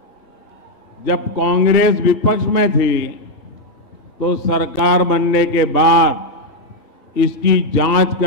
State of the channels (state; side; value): late; left; 2.7 ms